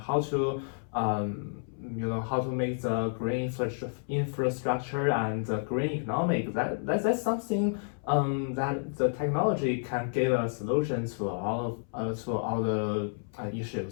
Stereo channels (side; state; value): right; silent; 58 dB below the other